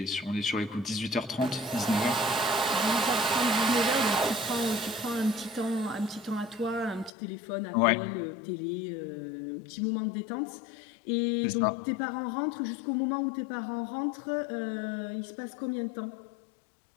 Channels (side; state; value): right; drops out; at 7.1 s